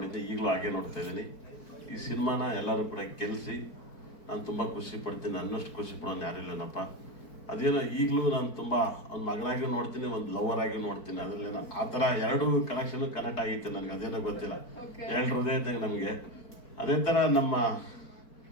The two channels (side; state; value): right; late; 4.5 ms